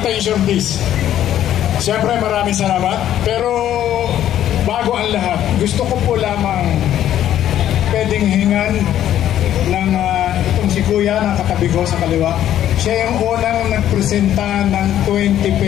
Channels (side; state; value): right; quieter; 11.5 dB